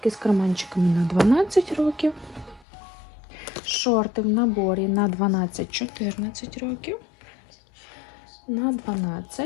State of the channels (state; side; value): drops out; right; at 2.7 s